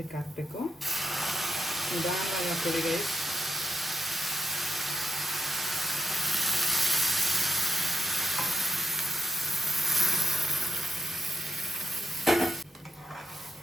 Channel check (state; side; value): normal; both; correlation 0.84